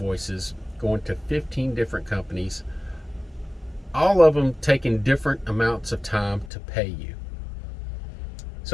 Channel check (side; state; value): right; drops out; at 6.5 s